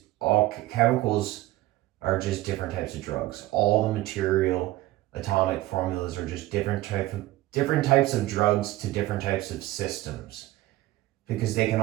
all chemicals are just different types of drugs. All the material atomic formulas are just different types of drugs to different types of systems because they can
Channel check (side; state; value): left; quieter; 17.1 dB